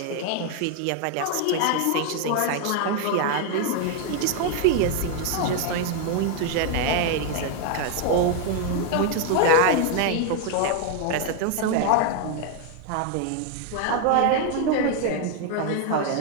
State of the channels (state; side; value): different; both; correlation 0.00